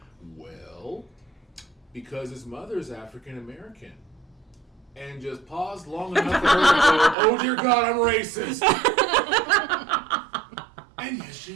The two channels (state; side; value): drops out; left; at 7.2 s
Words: well, because his mother is African American. And just paused long enough for her to go, oh dear God, I'm racist. And yes,